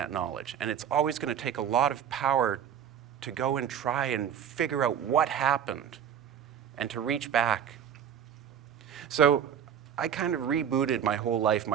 knowledge, and it's always going to take a lot of power to go and try and figure out what happened and to reach back. So I kind of rebooted my whole life,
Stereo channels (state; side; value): quieter; left; 8.7 dB